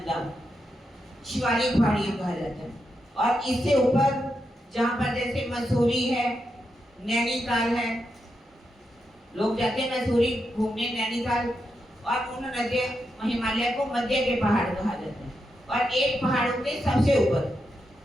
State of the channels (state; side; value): normal; both; correlation 0.85